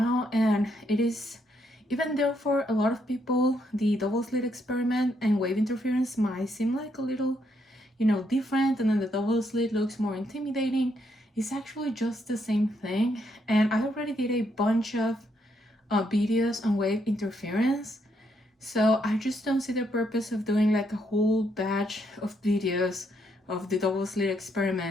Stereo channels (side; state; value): both; normal; correlation 0.75